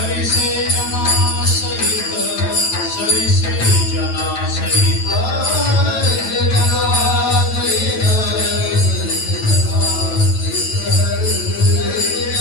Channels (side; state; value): right; late; 9.1 ms